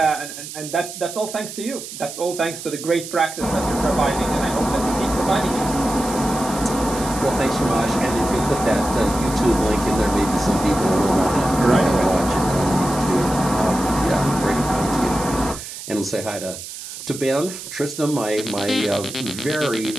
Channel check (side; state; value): right; noise; hiss, 11 dB below the sound